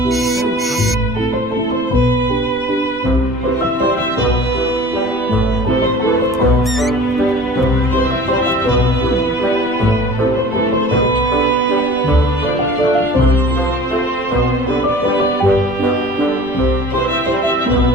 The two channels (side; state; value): right; noise; rumble, 22 dB below the sound